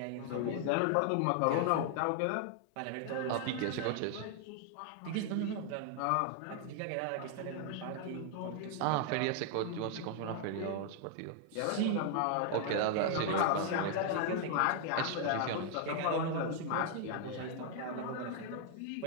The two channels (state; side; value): different; both; correlation 0.00